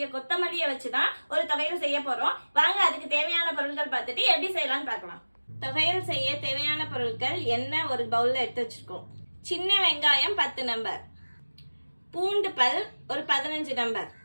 கொத்தமல்லியை வச்சுதான் ஒரு தொகையல் செய்ய போறோம். வாங்க அதுக்கு தேவையான பொருட்கள் பார்த்துட்டு எப்படி செய்யலாம்னு பார்க்கலாம். தொகையல் செய்ய தேவையான பொருட்கள் எண்ணெய் ஒரு பவுல்ல எடுத்து வச்சிருக்கோம். சின்ன வெங்காயம் 10 நம்பர், பூண்டு பல் ஒரு 15 நம்பர்,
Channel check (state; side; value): inverted; both; correlation -1.00